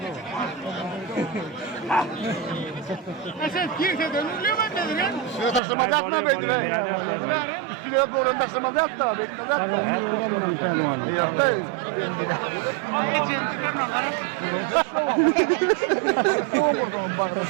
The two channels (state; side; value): drops out; left; at 5.6 s